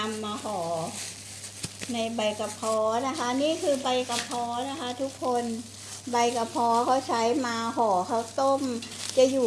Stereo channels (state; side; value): identical; both; correlation 1.00